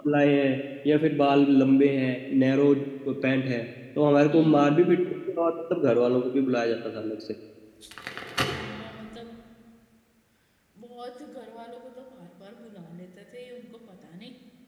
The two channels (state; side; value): identical; both; correlation 1.00